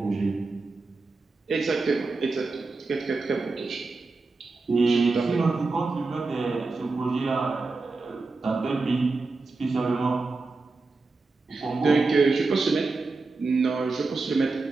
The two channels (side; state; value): left; quieter; 3.8 dB